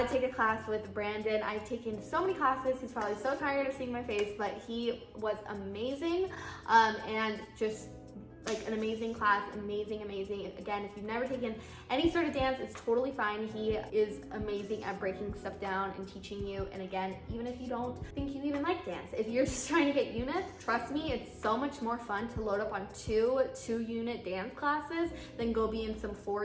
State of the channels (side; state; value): both; identical; correlation 1.00